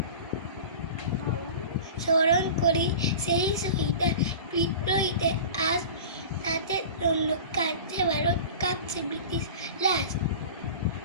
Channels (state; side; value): inverted; both; correlation -0.36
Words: স্মরণ করি সেই শহীদের বিদ্রোহীদের আজ, তাদের জন্য কাঁদছে ভারত, কাঁপছে ব্রিটিশ লাশ।